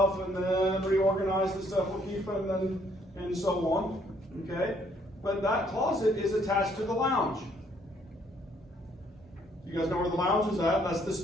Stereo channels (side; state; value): both; normal; correlation 0.66